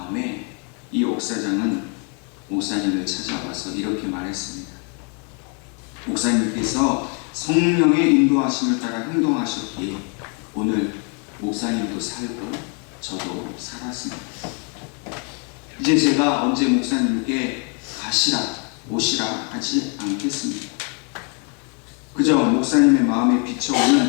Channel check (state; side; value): quieter; right; 37.8 dB